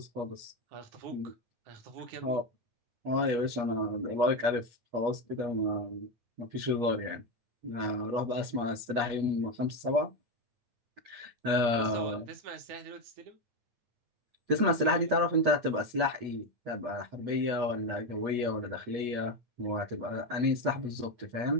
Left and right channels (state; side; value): late; left; 8.4 ms